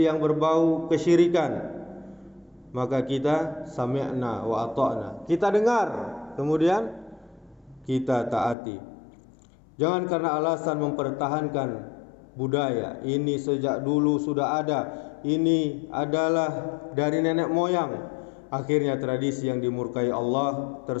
yang berbau kesyirikan, maka kita sami'na wa ata'na, kita dengar, kemudian kita taati. Jangan karena alasan mempertahankan budaya ini sejak dulu sudah ada, ini adalah dari nenek moyang, akhirnya tradisi yang dimurkai Allah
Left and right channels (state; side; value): drops out; right; at 8.6 s